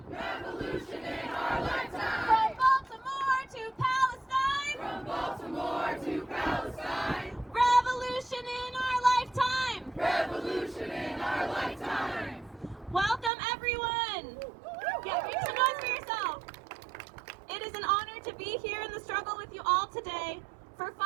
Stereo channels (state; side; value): drops out; left; at 13.3 s